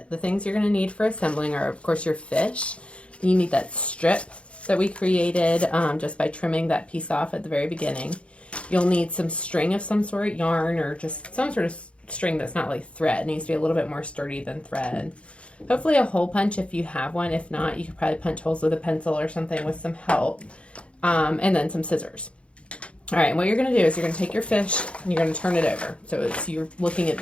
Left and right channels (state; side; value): late; right; 0.060 ms